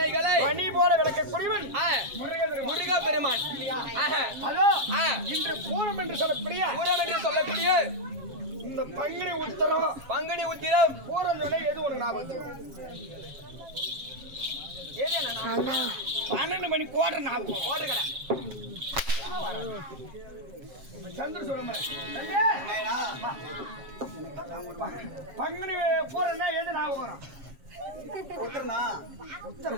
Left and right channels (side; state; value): left; late; 7.3 ms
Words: பனி போல விளக்கக்கூடியவன் முருக பெருமான். அதோ இன்று பூரம் என்று சொல்லக்கூடிய இந்த பங்குனி உத்திரம் பூரம் சொன்ன எது உனக்கு ஞாபகம்? 12 மணி கோட்டை ஞாபகம் கோட்டை கடை சந்திர சொல்ல பங்குனி பூரம்னா எது ஞாபகம் வரும்? உத்தரனா?